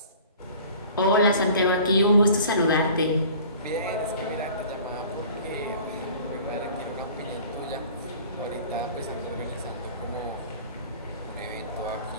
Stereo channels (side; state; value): both; inverted; correlation -0.46